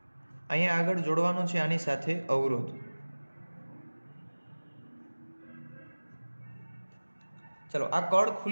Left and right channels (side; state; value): both; inverted; correlation -1.00